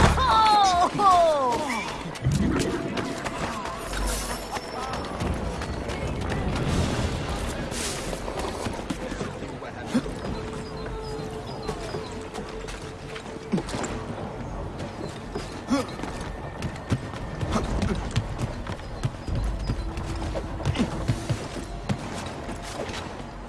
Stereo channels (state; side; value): identical; both; correlation 1.00